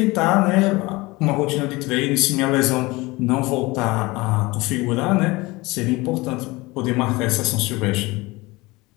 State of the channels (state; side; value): quieter; right; 22.4 dB